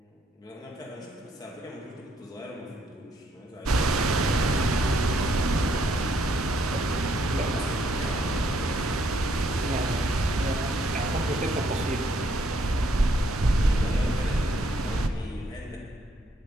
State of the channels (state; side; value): normal; both; correlation 0.71